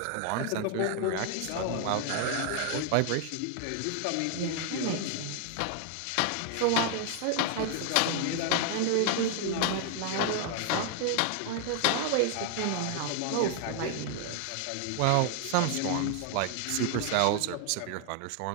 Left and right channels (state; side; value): different; both; correlation 0.00